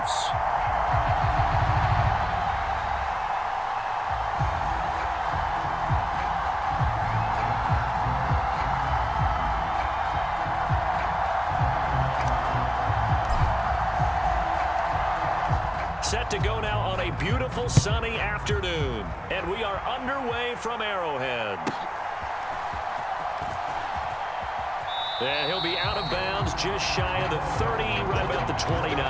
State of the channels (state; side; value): identical; both; correlation 1.00